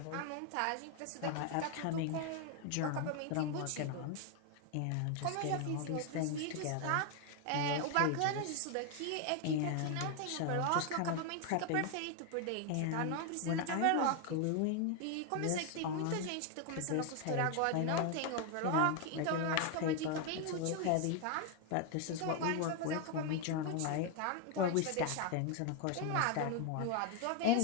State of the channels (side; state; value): both; different; correlation 0.01